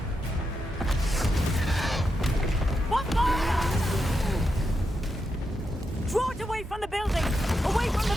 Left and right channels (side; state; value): both; normal; correlation 0.85